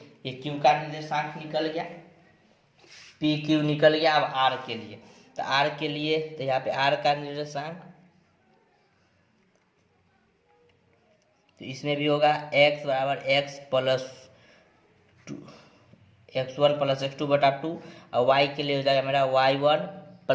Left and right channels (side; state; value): both; identical; correlation 1.00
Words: q का निर्देशांक निकल गया, पी क्यू निकल गया। अब r के लिए, तो r के लिए तो यहाँ पे r का निर्देशांक, तो इसमें भी होगा x बराबर x + 2, x1 + x2/2, और y के लिए हो जाएगा मेरा y1